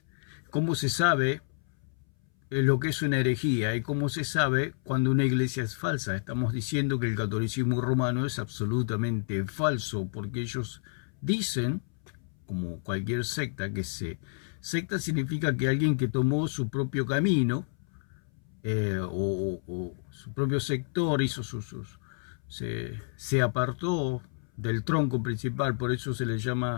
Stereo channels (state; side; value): silent; right; 58 dB below the other